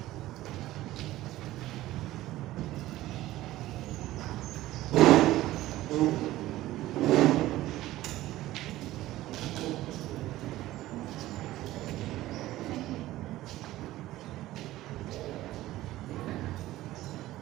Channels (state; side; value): quieter; left; 15.9 dB